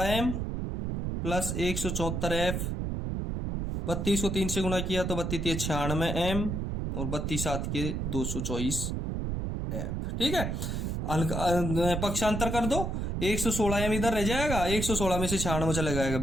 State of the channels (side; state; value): right; noise; rumble, 2 dB below the sound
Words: प्लस 174F। 32 को 3 से गुणा किया तो 32 96M और 32 7 के 224F। ठीक है। पक्षांतर कर दो, 116M इधर रह जाएगा, 116 में से 96 चला जाएगा